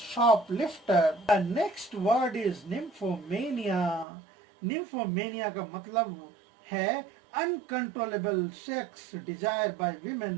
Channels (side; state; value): left; drops out; at 4.0 s